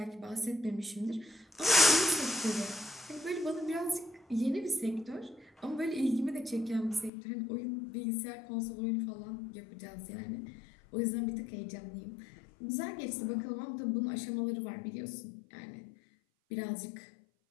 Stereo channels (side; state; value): right; drops out; at 7.1 s